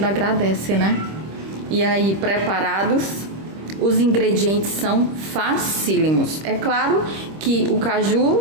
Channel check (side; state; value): left; late; 25 ms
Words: agradece, né? E aí, preparados? Os ingredientes são facílimos. É claro que o caju